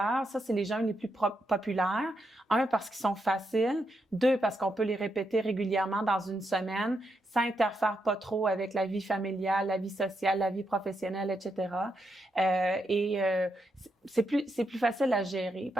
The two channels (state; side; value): normal; both; correlation 0.82